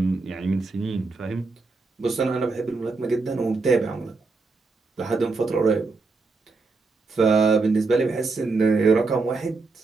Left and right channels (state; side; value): quieter; left; 3.9 dB